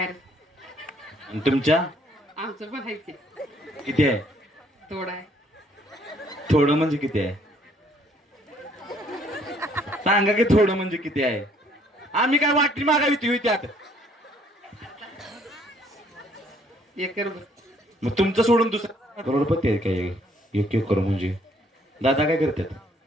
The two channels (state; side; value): normal; both; correlation 0.63